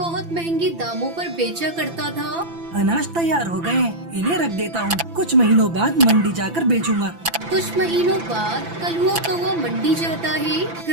महंगे दामों पर बेचा करता था। अनाज तैयार हो गए, इन्हें रख देता हूँ, कुछ महीनों बाद मंडी जाकर बेचूंगा। कुछ महीनों बाद कलुआ कौवा मंडी जाता है।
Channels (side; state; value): left; late; 5.9 ms